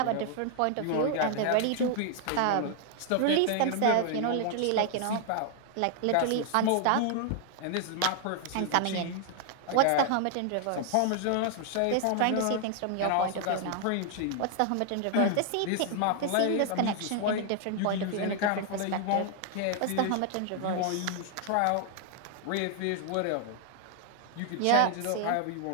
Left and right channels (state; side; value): different; both; correlation 0.00